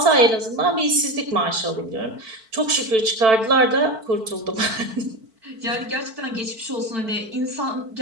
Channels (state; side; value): late; left; 4.5 ms